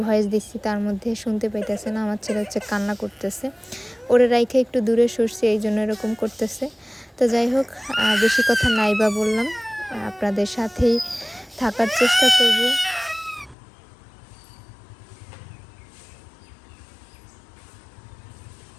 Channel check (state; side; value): drops out; right; at 13.6 s